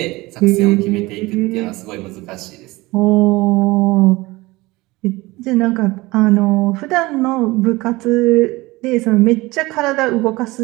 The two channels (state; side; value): quieter; left; 21.1 dB